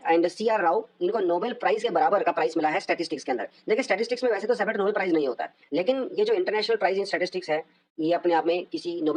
एंड CR राव, इनको नोबेल प्राइज़ के बराबर का प्राइज़ मिला है स्टैटिस्टिक्स के अंदर। देखिए स्टैटिस्टिक्स में वैसे तो सेपरेट नोबेल प्राइज़ नहीं होता है, लेकिन ये जो इंटरनेशनल प्राइज़ इन स्टैटिस्टिक्स है, ये अपने आप में किसी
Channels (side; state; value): both; identical; correlation 1.00